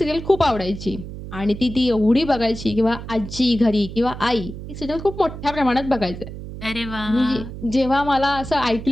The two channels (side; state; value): right; noise; hum, 10 dB below the sound